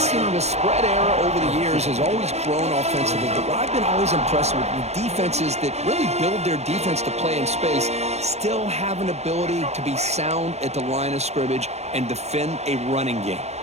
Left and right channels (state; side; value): late; left; 0.31 ms